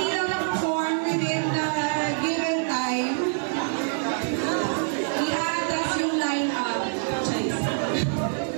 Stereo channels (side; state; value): left; silent; 56 dB below the other